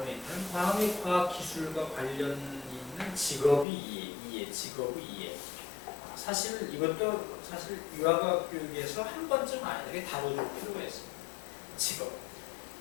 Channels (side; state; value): right; drops out; at 3.7 s